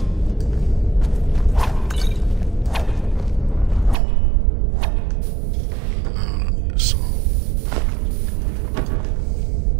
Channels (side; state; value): left; drops out; at 4.0 s